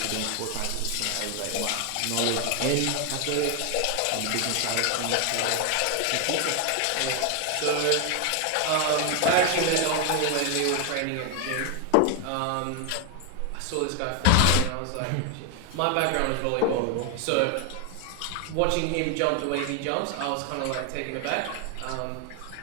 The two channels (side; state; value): both; different; correlation 0.01